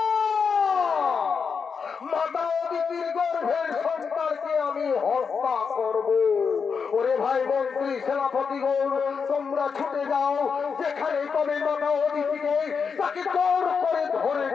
মাতা অদিতির গর্ভের সন্তানকে আমি হত্যা করব। ওরে ভাই মন্ত্রী সেনাপতি গৌর, তোমরা ছুটে যাও, যেখানে তবে মাতা অদিতিকে তাকে জোর করে ধরে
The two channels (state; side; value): quieter; right; 5.8 dB